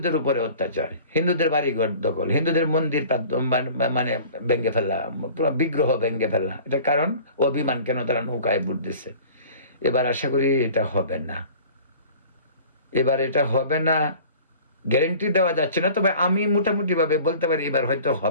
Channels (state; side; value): inverted; both; correlation -0.45